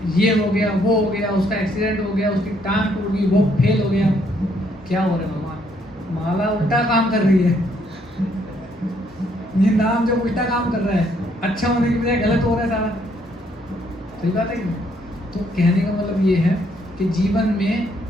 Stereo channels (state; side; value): normal; both; correlation 0.70